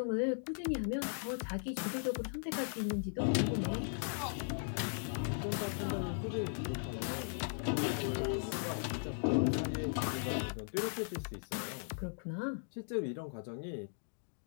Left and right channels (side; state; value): right; silent; digital silence